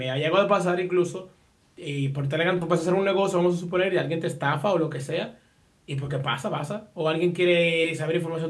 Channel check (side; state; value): both; identical; correlation 1.00